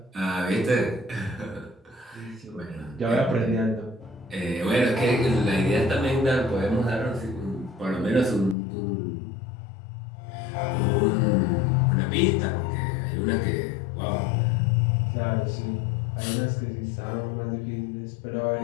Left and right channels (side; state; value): right; drops out; at 8.6 s